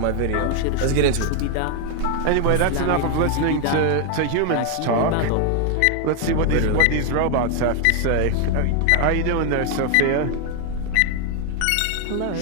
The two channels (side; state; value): both; different; correlation 0.00